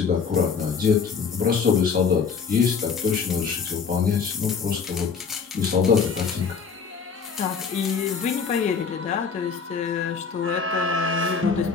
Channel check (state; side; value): quieter; right; 5.8 dB